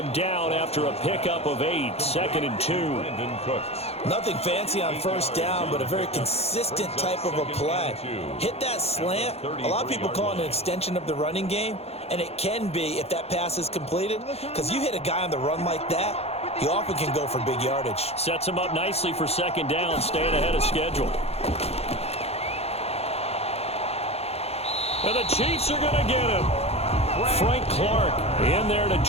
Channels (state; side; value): late; right; 0.30 ms